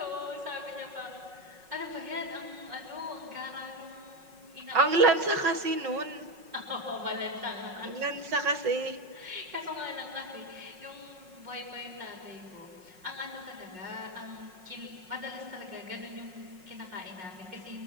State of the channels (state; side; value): late; left; 5.4 ms